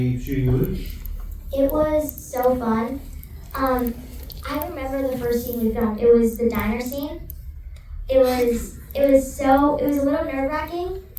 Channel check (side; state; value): both; identical; correlation 1.00